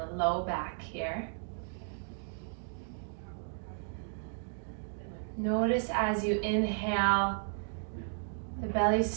the low back here. Notice as you inhale, the belly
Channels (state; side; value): silent; left; digital silence